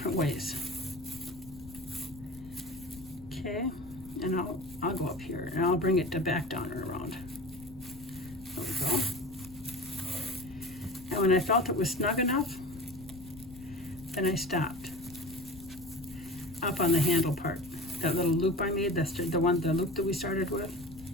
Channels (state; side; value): noise; left; rumble, 17 dB below the sound